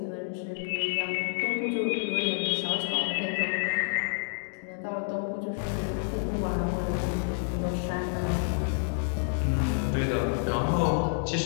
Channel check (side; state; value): right; silent; digital silence